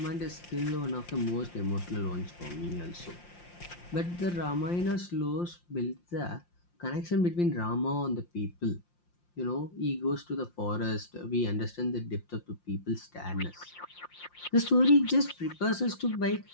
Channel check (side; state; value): right; late; 5.7 ms